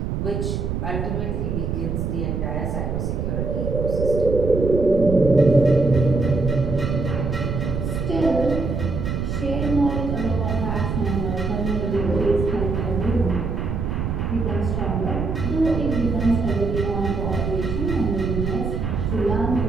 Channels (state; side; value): noise; right; rumble, 2 dB below the sound